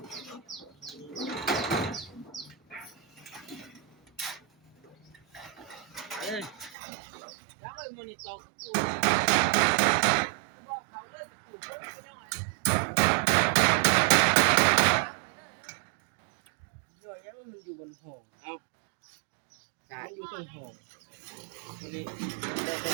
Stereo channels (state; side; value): drops out; left; at 6.8 s